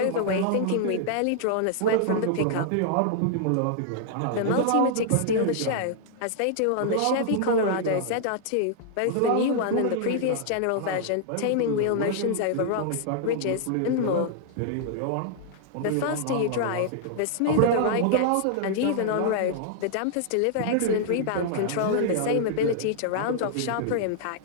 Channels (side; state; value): both; different; correlation -0.01